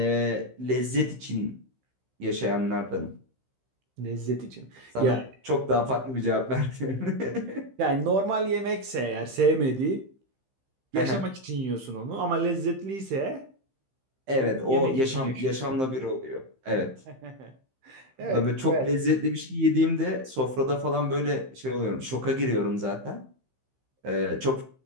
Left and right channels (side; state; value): left; late; 15 ms